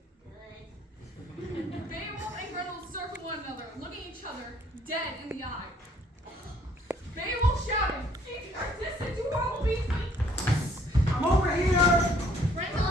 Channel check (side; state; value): both; normal; correlation 0.61